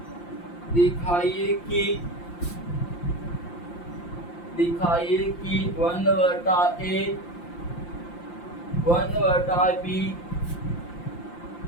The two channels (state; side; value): late; right; 5.8 ms